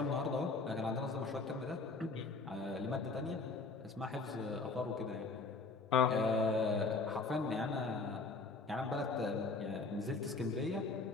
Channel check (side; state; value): right; quieter; 3.9 dB